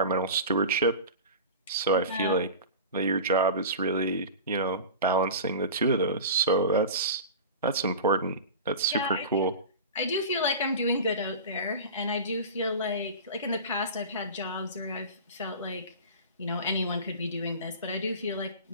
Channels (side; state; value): both; inverted; correlation -0.31